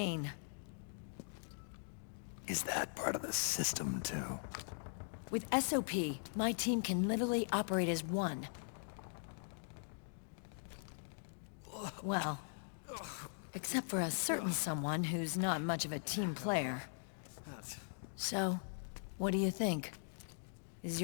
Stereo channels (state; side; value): silent; right; digital silence